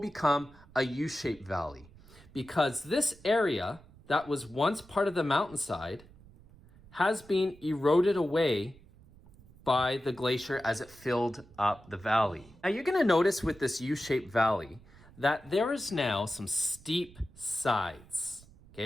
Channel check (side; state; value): right; noise; rumble, 24 dB below the sound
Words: a U-shaped valley. Because this area that was once part of the mountainside has been eroded away by the glacier as it filled up the valley. Now you're going to notice with this U-shaped valley that there is now some steep sides.